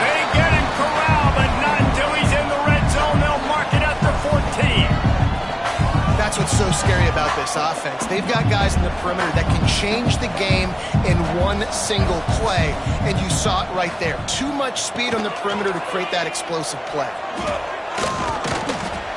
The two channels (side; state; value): both; identical; correlation 1.00